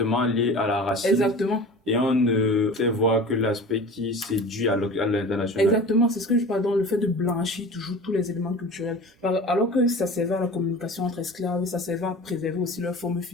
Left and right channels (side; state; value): both; normal; correlation 0.37